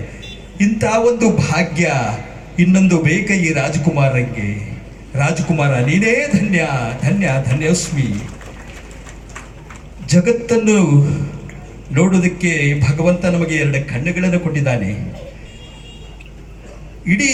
ಇಂಥ ಒಂದು ಭಾಗ್ಯ ಇನ್ನೊಂದು ಬೇಕ ಈ ರಾಜಕುಮಾರರಿಗೆ. ರಾಜಕುಮಾರ ನೀನೇ ಧನ್ಯ ಧನ್ಯ ಧನ್ಯೋಸ್ಮಿ. ಜಗತ್ತನ್ನು ನೋಡೋದಕ್ಕೆ ಭಗವಂತ ನಮಗೆ 2 ಕಣ್ಣುಗಳನ್ನು ಕೊಟ್ಟಿದ್ದಾನೆ. ಇಡೀ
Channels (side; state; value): both; identical; correlation 1.00